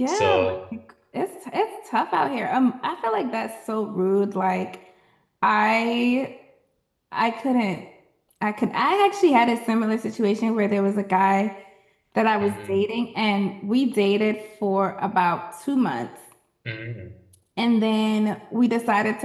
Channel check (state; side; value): identical; both; correlation 1.00